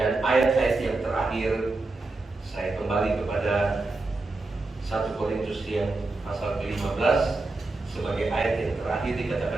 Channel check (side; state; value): left; quieter; 3.3 dB